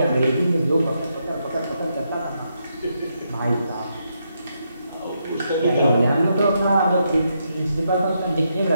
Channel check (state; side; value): inverted; both; correlation -0.80